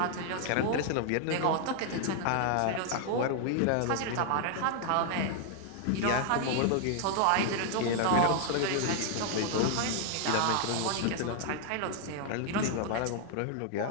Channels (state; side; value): different; both; correlation 0.00